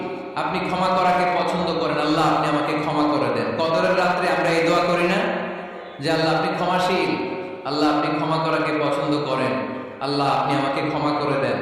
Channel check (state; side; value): identical; both; correlation 1.00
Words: আপনি ক্ষমা করাকে পছন্দ করেন। আল্লাহ, আপনি আমাকে ক্ষমা করে দেন। কদরের রাত্রে আমরা এই দোয়া করি না যে আল্লাহ আপনি ক্ষমাশীল, আল্লাহ আপনি ক্ষমা করাকে পছন্দ করেন, আল্লাহ আপনি আমাকে ক্ষমা করে দেন।